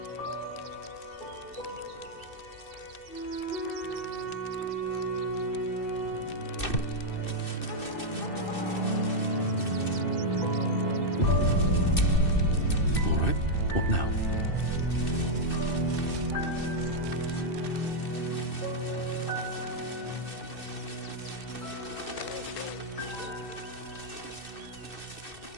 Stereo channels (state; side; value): late; right; 2.6 ms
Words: All right, what now?